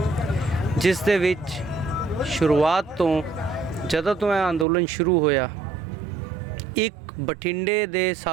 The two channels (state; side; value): drops out; left; at 4.7 s